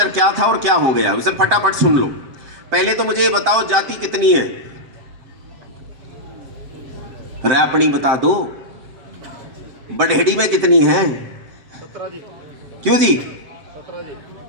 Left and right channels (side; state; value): left; late; 7.7 ms